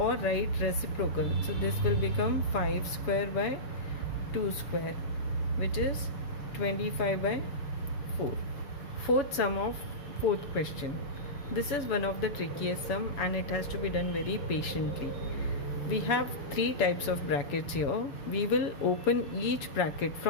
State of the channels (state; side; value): late; right; 7.1 ms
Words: write reciprocal. So this will become 5 square by 2 square, which is 25 by 4. Fourth sum of fourth question. This is one of the trickiest sum and it has to be done very patiently. We have 3 types of brackets here. We will open each bracket